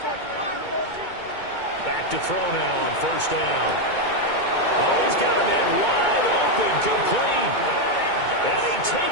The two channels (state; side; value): late; right; 2.2 ms